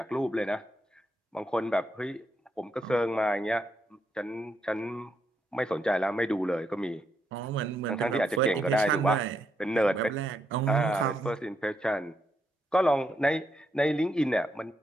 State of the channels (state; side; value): normal; both; correlation 0.79